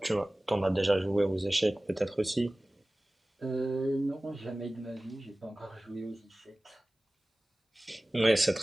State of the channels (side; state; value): both; normal; correlation 0.98